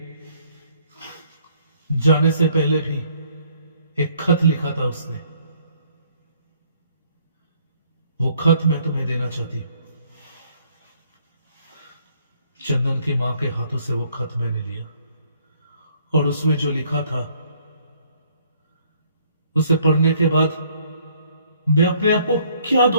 जाने से पहले भी एक खत लिखा था उसने। वो खत मैं तुम्हें देना चाहती हूं। चंदन की मां के हाथों से वो खत मैंने लिया और उसमें जो लिखा था, उसे पढ़ने के बाद मैं अपने आप को क्या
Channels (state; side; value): inverted; both; correlation -0.64